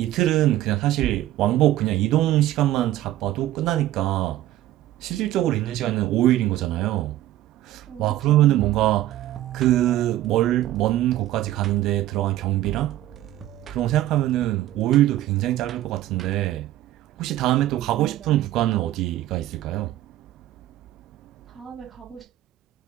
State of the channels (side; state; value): left; quieter; 14.2 dB